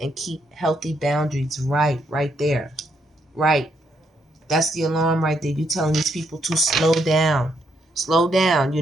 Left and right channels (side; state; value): both; normal; correlation 0.76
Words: keep healthy boundaries. Right there. Right. That's the alarm right there. You're telling these people to slow down. Slow down.